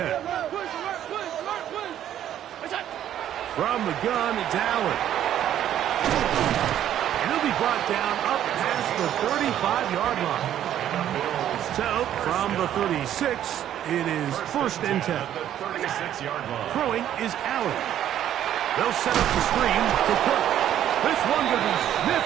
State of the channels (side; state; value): left; quieter; 11.1 dB